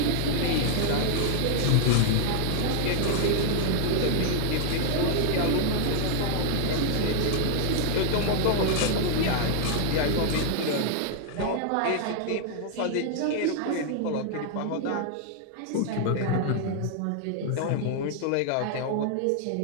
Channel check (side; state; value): both; different; correlation 0.00